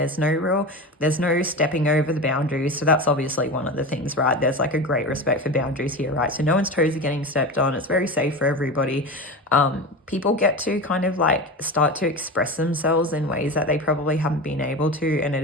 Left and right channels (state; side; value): normal; both; correlation 0.26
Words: no stepping over the boundaries. So that's obviously one of the things, right? There's like a great respect for boundaries here, right? So no one's toes are getting stepped on. It's very safe for everybody. People get to kind of like start to express themselves in ways that they probably haven't been able to, and it